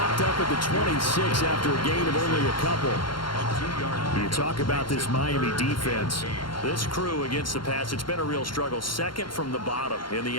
up at the 26 after a gain of only a couple. You talk about this Miami defense. This crew against the pass, it's been a real struggle. 2nd from the bottom in the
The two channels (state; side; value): late; right; 0.72 ms